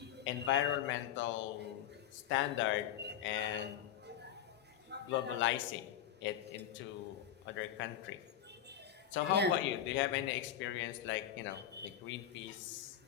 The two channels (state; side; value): quieter; right; 10.3 dB